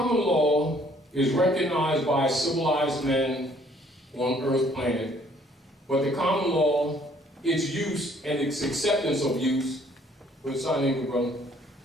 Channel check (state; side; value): normal; both; correlation 0.61